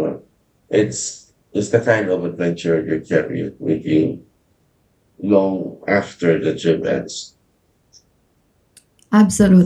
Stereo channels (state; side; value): identical; both; correlation 1.00